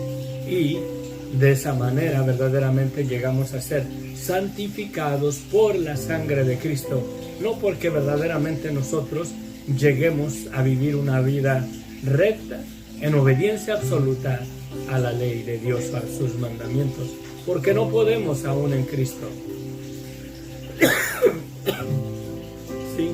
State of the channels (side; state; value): both; identical; correlation 1.00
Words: y de esa manera verdaderamente llegamos a ser santificados por la sangre de Cristo, no porque verdaderamente nosotros lleguemos a vivir una vida recta en obediencia absoluta a la ley de Dios, a sus mandamientos, porque no podemos aún en Cristo. Sí.